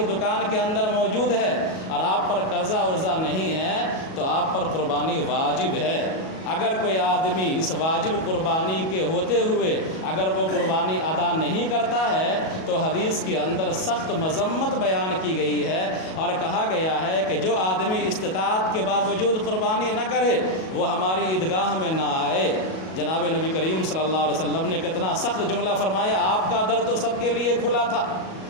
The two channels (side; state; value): right; late; 37 ms